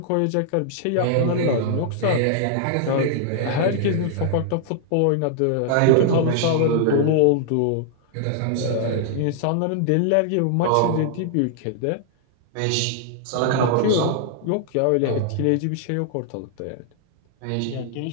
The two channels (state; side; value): different; both; correlation -0.01